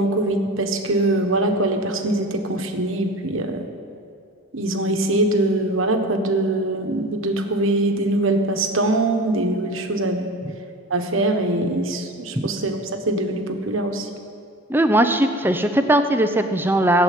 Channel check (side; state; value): both; normal; correlation 0.38